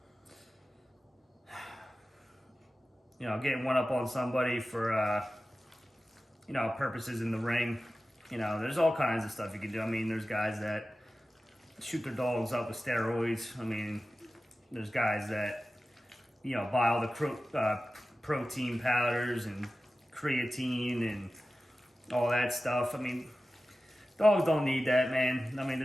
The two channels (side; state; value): both; normal; correlation 0.95